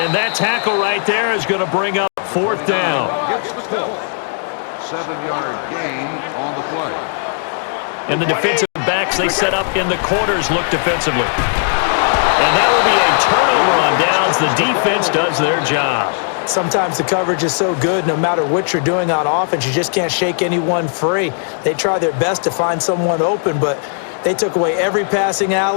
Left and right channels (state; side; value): silent; right; 68 dB below the other